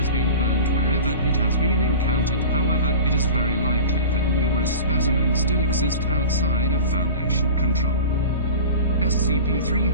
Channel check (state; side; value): inverted; both; correlation -0.35